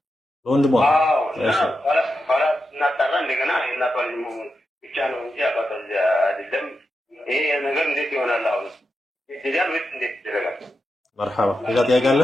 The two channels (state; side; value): normal; both; correlation 0.88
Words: በወንድሟ አዎ። ኋላ እናጣራ እንደገና የእናቷ ልጅ መሆኑን ብቻ ነው እንጂ አባቷ ልጅ አይደለም። ይሄ ነገር እንዴት ይሆናል? አሁን ይደረጋል ወይስ እንዴት ይደረጋል? መርሐባ። ሌላ ጥያቄ አለ?